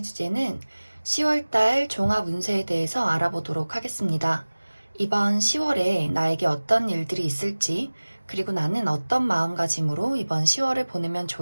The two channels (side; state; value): both; inverted; correlation -1.00